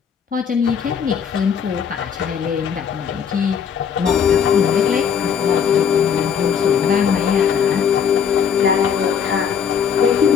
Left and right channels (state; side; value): quieter; right; 7.4 dB